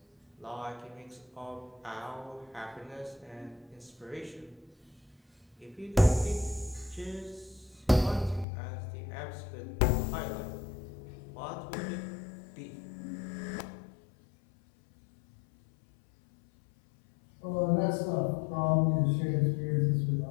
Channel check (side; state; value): right; drops out; at 8.5 s